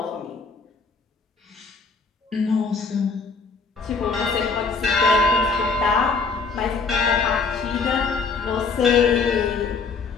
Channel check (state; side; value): quieter; right; 4.6 dB